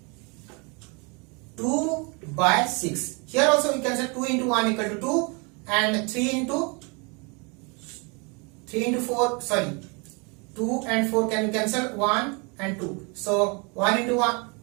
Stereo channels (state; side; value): quieter; left; 31.8 dB